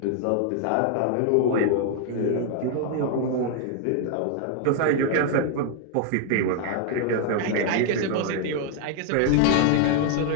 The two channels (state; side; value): different; both; correlation 0.00